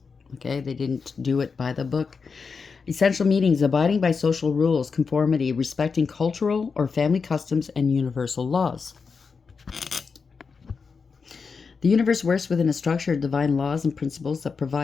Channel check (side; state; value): right; quieter; 5.2 dB